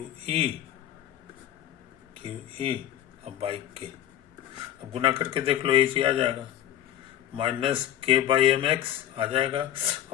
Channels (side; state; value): right; quieter; 11.6 dB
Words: ई और बाई के। अब गुना करके देख लो, ये चीज आ जाएगा, माइनस के बाई एम एक्स आ जाएगा